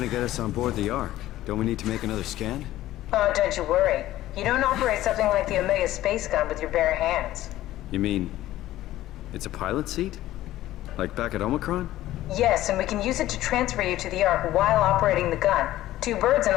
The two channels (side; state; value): right; quieter; 14.8 dB